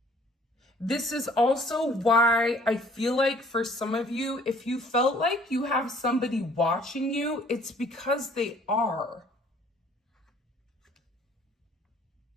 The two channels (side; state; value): both; normal; correlation 0.57